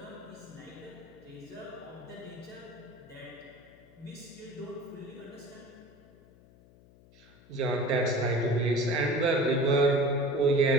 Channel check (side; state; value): left; noise; hum, 25 dB below the sound